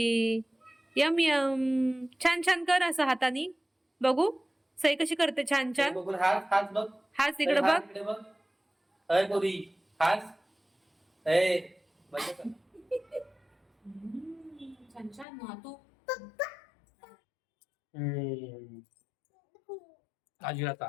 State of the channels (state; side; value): drops out; right; at 15.2 s